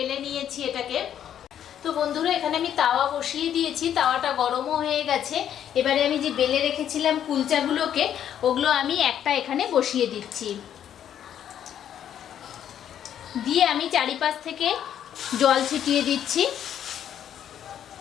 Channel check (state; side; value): quieter; right; 9.9 dB